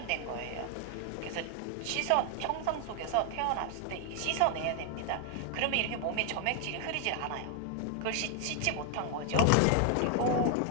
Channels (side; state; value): both; different; correlation 0.00